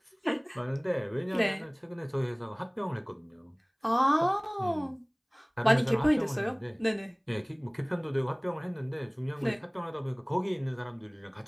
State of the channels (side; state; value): both; identical; correlation 1.00